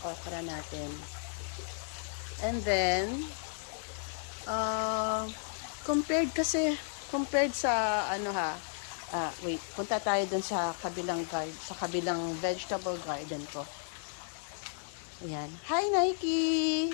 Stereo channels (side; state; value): right; silent; digital silence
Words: okra natin. And then, compared sa, wait, punta tayo dun sa kabilang vegetable garden ko. Ayan. Hi, Nike!